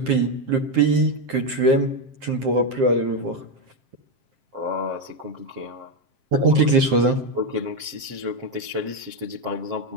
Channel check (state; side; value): late; left; 7.6 ms